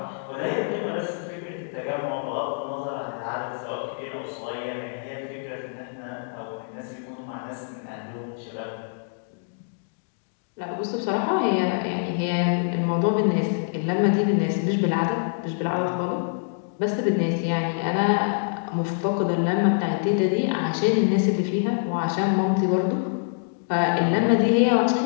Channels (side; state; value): right; silent; digital silence